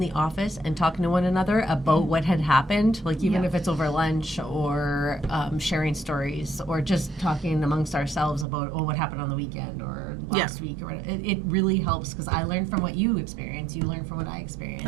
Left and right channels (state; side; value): drops out; left; at 8.5 s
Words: office and talking to one another about what had happened, like even if it's over lunch or sharing stories or just talking amongst ourselves about, what happened on the weekend or last week, or it really helps because I learn from what you experience, you learn from what I experience.